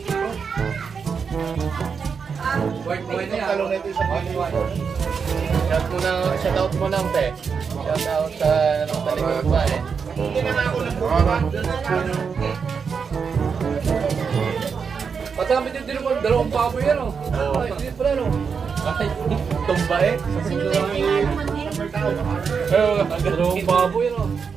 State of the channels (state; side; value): quieter; left; 6.0 dB